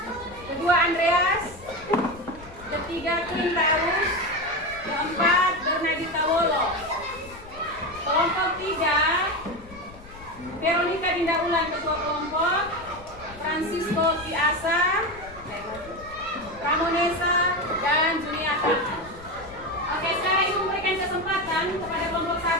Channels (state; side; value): noise; left; rumble, 19 dB below the sound